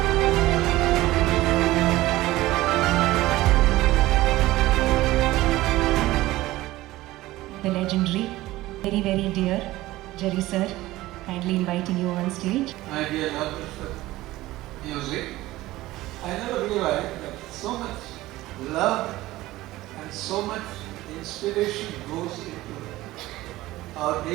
The legendary, very, very dear Jerry sir, kindly inviting you on stage. My dear lovers for music, I never realized that so much love and so much inspiration goes into our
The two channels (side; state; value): left; quieter; 17.3 dB